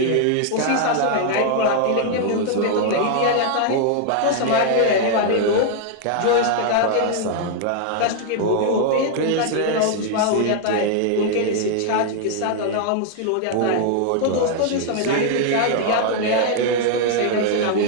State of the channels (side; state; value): both; different; correlation 0.00